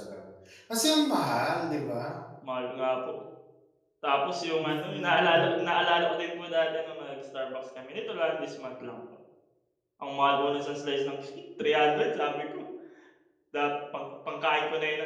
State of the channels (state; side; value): identical; both; correlation 1.00